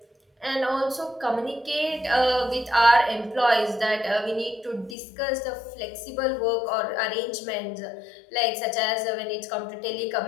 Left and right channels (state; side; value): drops out; right; at 5.0 s